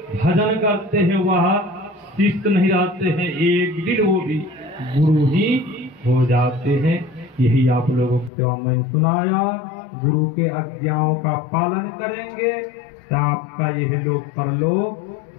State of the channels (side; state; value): right; drops out; at 8.3 s